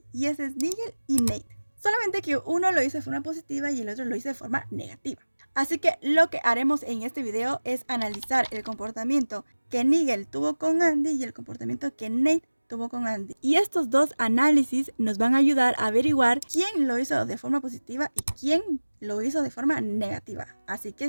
y ese es Nigel y Nate. Solamente que uno lo hizo de forma positiva y el otro lo hizo de forma negativa. Así que lo que haremos en este video es analizar el comportamiento que Nigel tuvo con Andy y el comportamiento que Nate tuvo con Andy. Y estos dos análisis nos van a ayudar a averiguar quién lo hizo de forma positiva y quién lo hizo de forma negativa. Así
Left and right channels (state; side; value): inverted; both; correlation -1.00